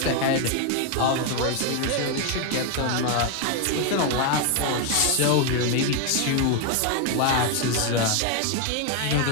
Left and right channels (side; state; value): both; different; correlation 0.01